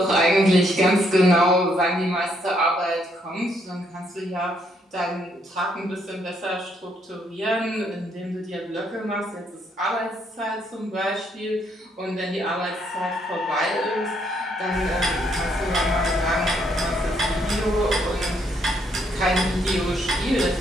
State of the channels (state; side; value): normal; both; correlation 0.72